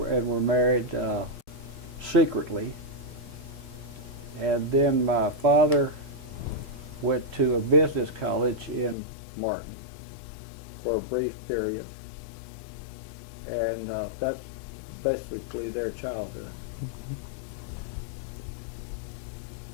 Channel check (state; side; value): drops out; right; at 9.0 s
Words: married secretly. And then my father went to a business college in Martin for a brief period, and that's basically their childhood.